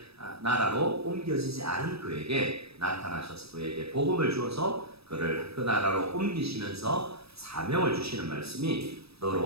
나라로 옮겨지지 않은 그에게 나타나셔서 그에게 복음을 주어서 그를 그 나라로 옮기시면서 사명을 주시는 말씀이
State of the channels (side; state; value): left; late; 0.77 ms